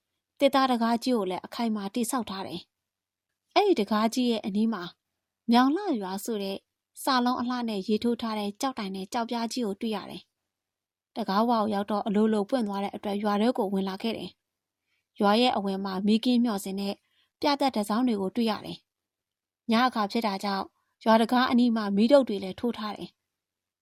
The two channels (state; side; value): identical; both; correlation 1.00